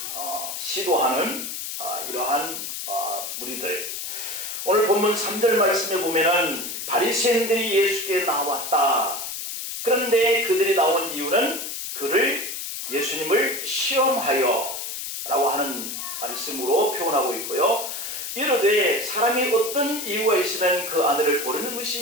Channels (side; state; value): left; noise; hiss, 6 dB below the sound